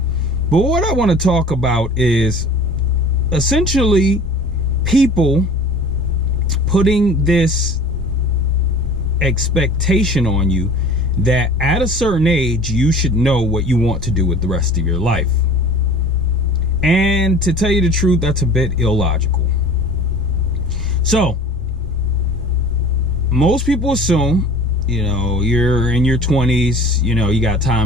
But what I want to talk about is essentially people putting this expectation on you that at a certain age you should know what you want to do with the rest of your life. And to tell you the truth, that's a bit illogical. So most people assume, you know, you're in your 20s, you know, you got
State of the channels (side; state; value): both; normal; correlation 0.43